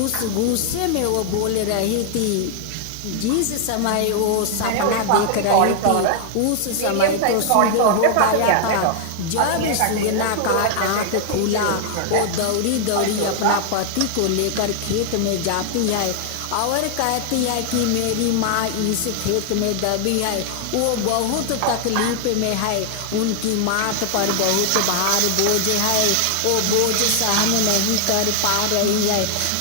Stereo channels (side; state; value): both; different; correlation 0.00